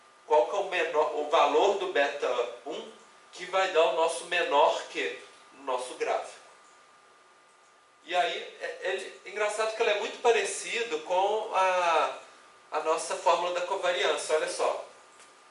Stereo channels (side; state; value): both; identical; correlation 1.00